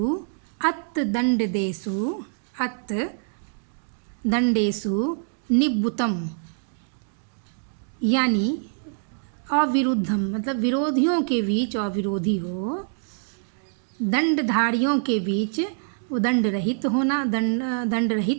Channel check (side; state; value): left; silent; digital silence